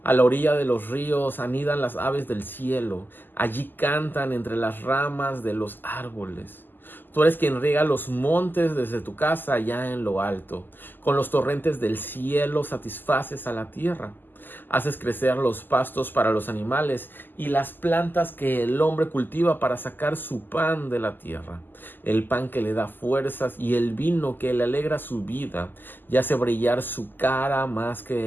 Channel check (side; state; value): right; late; 0.090 ms